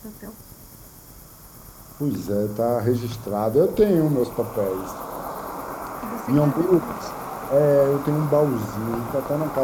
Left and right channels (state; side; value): identical; both; correlation 1.00